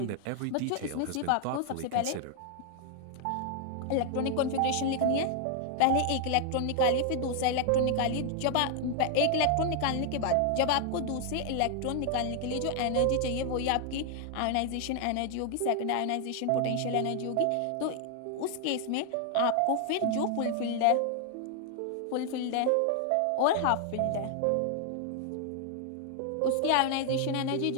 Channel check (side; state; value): both; different; correlation 0.00